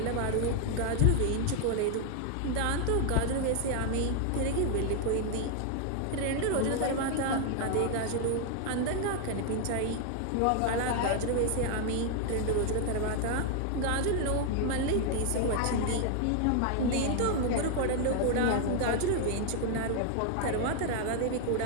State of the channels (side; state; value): both; different; correlation 0.00